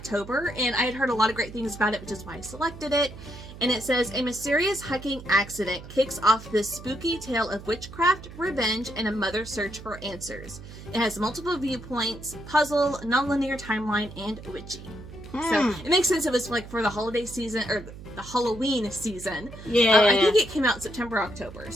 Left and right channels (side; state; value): right; noise; hum, 15 dB below the sound